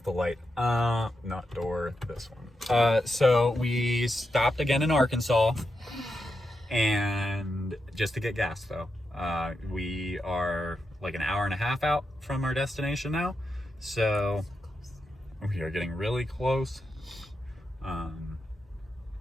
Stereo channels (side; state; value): both; normal; correlation 0.86